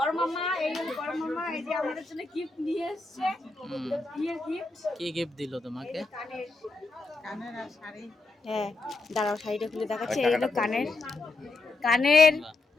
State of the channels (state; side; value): quieter; right; 3.4 dB